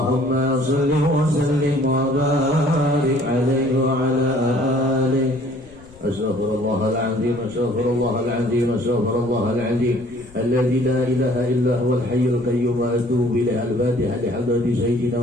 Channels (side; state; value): left; noise; rumble, 24 dB below the sound